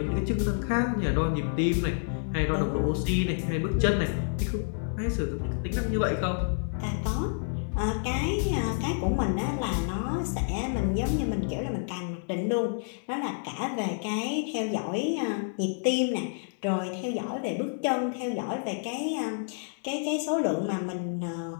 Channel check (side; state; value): right; silent; digital silence